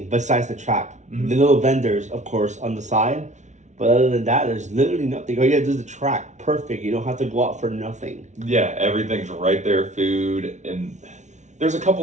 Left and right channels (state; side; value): late; left; 0.34 ms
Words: besides the track. The little vendors, of course, on the side. But other than that, there's literally nothing. All you have to do is the track. Perfect. You don't have to go out for nothing. Yeah, everything's right there. Food and... There's a